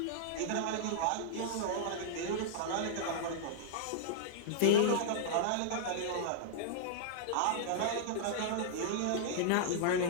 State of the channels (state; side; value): different; both; correlation -0.01